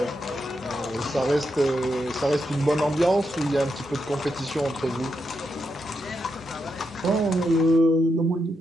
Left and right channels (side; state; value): both; normal; correlation 0.83